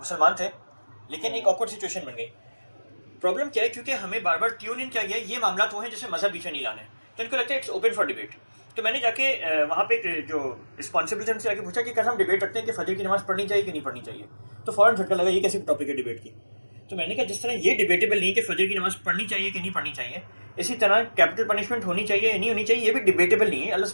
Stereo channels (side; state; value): both; inverted; correlation -1.00